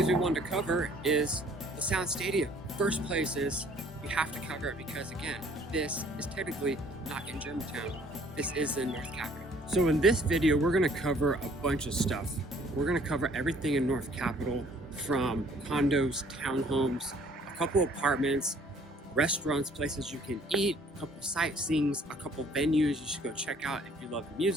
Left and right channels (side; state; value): both; normal; correlation 0.58